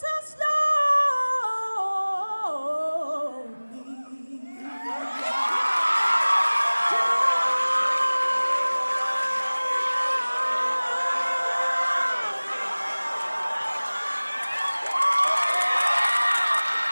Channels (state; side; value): inverted; both; correlation -1.00